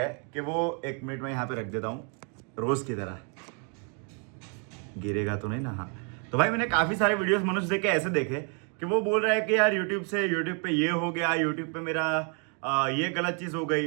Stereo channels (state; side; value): quieter; left; 38.5 dB